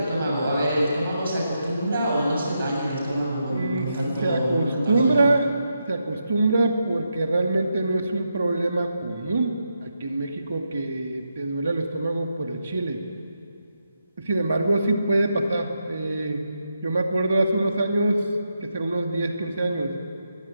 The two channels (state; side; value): inverted; both; correlation -0.84